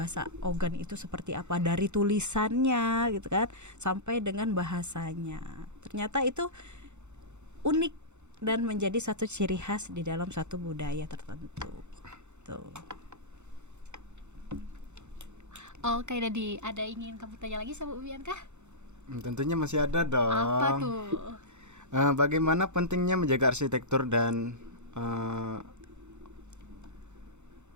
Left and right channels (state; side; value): late; left; 0.83 ms